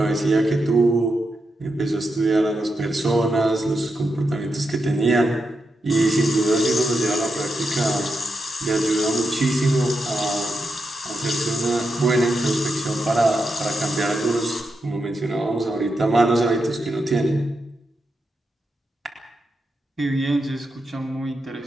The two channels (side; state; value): both; normal; correlation 0.86